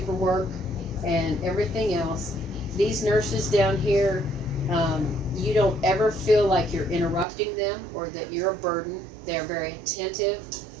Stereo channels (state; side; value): drops out; left; at 7.2 s